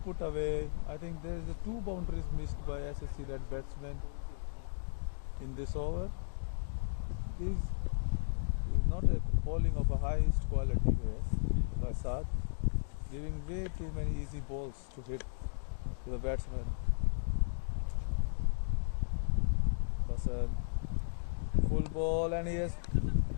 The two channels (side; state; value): right; silent; digital silence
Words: away. I think there is 2 boundaries missed by SSC Red batsmen in this over. This is not a bowling of a highest quality here by Saad, giving way too many easy balls to hit to the batsman. Basant, full ball, and he has